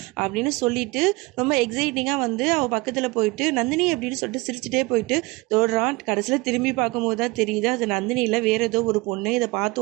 அப்படின்னு சொல்லிட்டு ரொம்ப எக்ஸைட்டிங்காக வந்து அவள் பக்கத்தில் போயிட்டு நந்தினி அப்படின்னு சொல்லிட்டு சிரிச்சுட்டே போயிட்டு தோடுறான். கடைசியில் திரும்பி பார்க்கும்போது தான் தெரியுது அது நந்தினி இல்லை, வேறு ஏதோ ஒரு பொண்ணு. இதை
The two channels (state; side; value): quieter; left; 23.9 dB